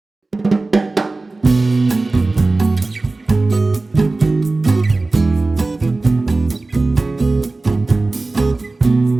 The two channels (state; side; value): quieter; left; 3.3 dB